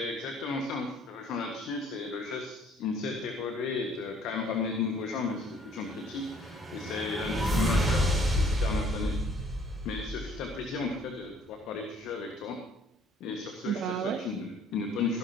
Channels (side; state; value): both; normal; correlation 0.58